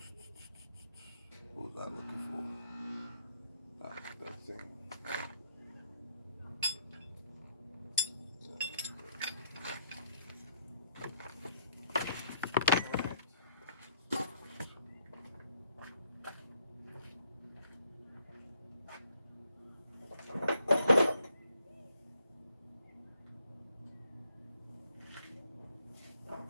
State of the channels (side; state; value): both; inverted; correlation -0.69